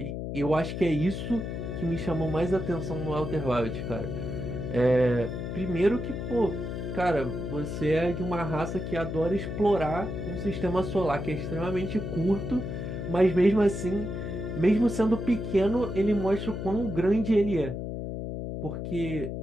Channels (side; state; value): left; noise; hum, 5 dB below the sound